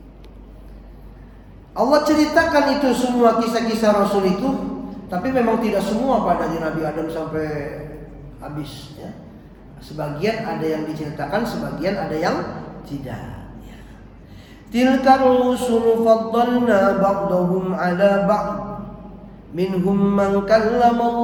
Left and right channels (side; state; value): both; identical; correlation 1.00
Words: Allah ceritakan itu semua kisah-kisah rasul itu, tapi memang tidak semua pada Nabi Adam sampai habis ya. Sebagian ada yang diceritakan, sebagian ada yang tidak. Tilka rusul faddalna ba'dahum 'ala ba'd minhum man kallama